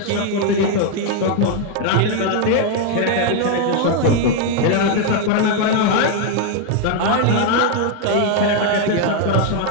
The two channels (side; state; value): both; different; correlation 0.01